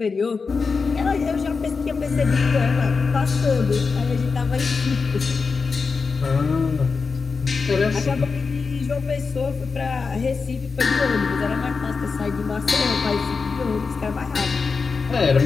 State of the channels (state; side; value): quieter; right; 4.8 dB